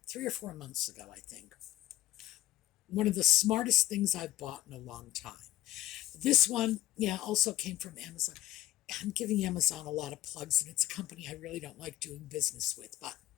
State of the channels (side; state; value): right; quieter; 14.3 dB